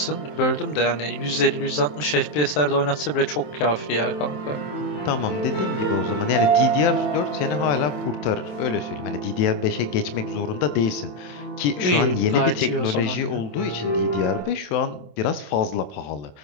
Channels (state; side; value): late; right; 27 ms